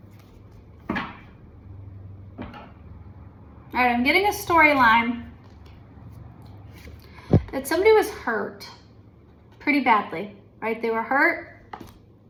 All right, I'm getting a storyline that somebody was hurt pretty badly, right? They were hurt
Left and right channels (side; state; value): both; identical; correlation 1.00